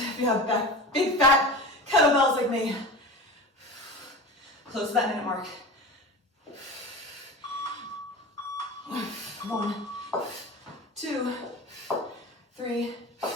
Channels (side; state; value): both; normal; correlation 0.31